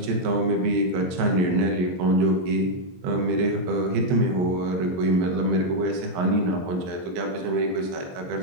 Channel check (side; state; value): left; late; 23 ms